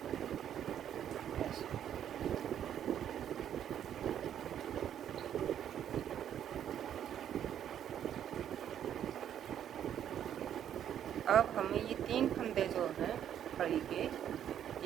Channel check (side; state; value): left; quieter; 9.9 dB